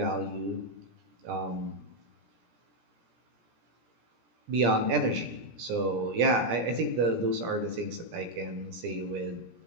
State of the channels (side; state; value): left; late; 17 ms